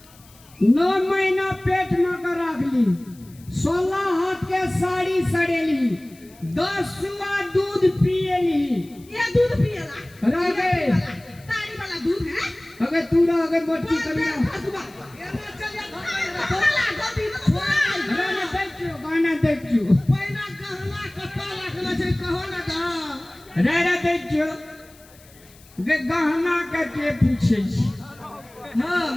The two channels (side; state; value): left; noise; hiss, 26 dB below the sound